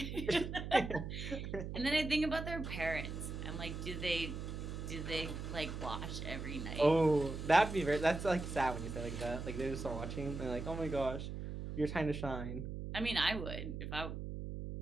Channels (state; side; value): noise; right; hum, 6 dB below the sound